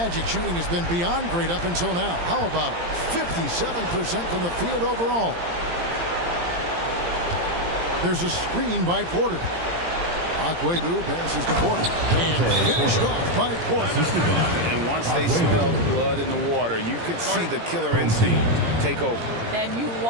shooting has been beyond great up until now. How about 57% from the field overall? There's a screen by Porter. Aguebu passes to Porter. And finished off by Porter. And once they smelled blood in the water, you could see the killer instinct take over. And you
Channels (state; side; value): late; left; 17 ms